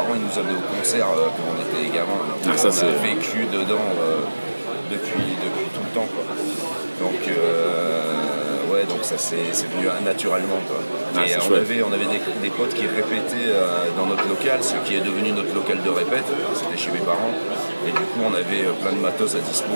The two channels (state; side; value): inverted; both; correlation -1.00